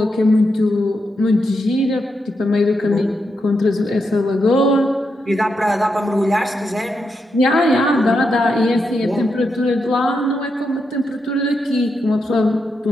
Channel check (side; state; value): both; normal; correlation 0.84